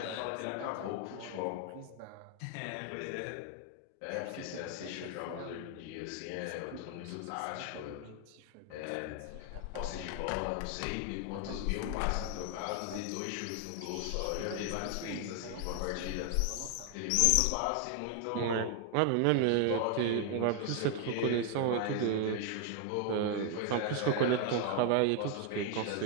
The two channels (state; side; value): different; both; correlation 0.00